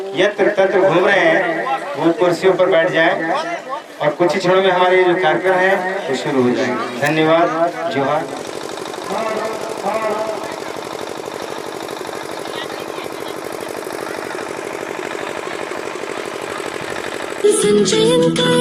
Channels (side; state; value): both; identical; correlation 1.00